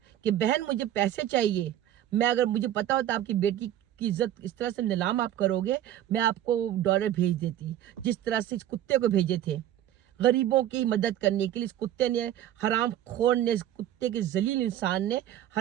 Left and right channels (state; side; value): quieter; left; 11.9 dB